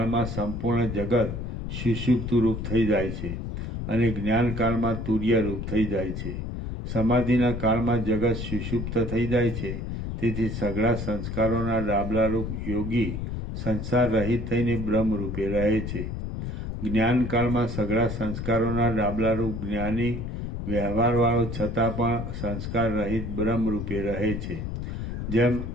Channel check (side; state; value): left; noise; rumble, 5 dB below the sound